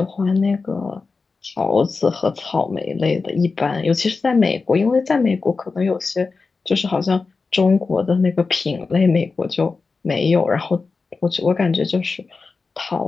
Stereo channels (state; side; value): quieter; right; 4.3 dB